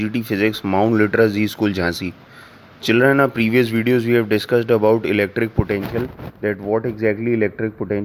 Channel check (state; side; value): identical; both; correlation 1.00